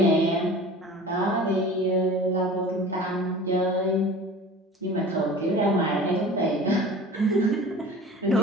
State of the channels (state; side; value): normal; both; correlation 0.40